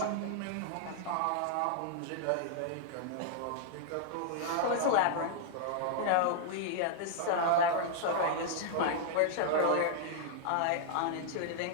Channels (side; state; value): both; different; correlation -0.01